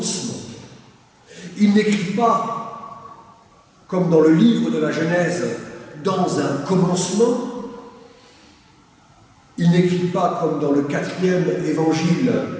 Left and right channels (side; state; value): both; identical; correlation 1.00